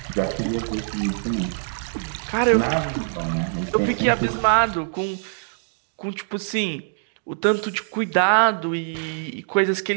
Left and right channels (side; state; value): left; silent; digital silence